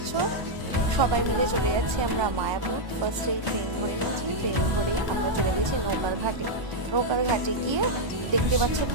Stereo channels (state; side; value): late; left; 1.0 ms